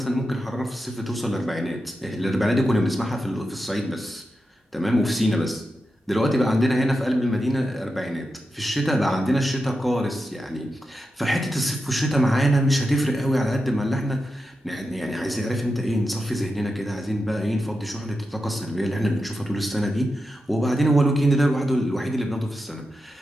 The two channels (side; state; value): both; normal; correlation 0.89